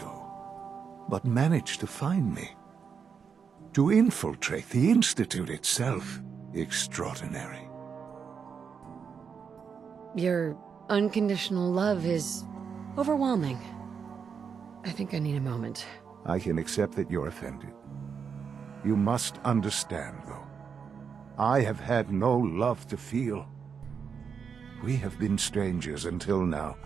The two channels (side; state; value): left; quieter; 6.4 dB